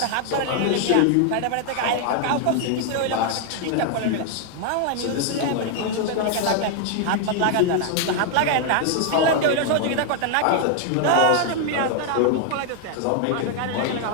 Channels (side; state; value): both; different; correlation 0.00